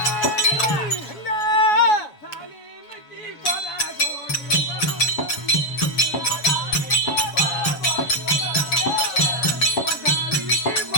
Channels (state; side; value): late; right; 7.1 ms